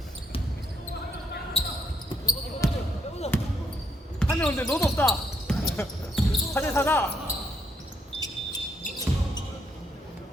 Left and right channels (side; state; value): both; normal; correlation 0.75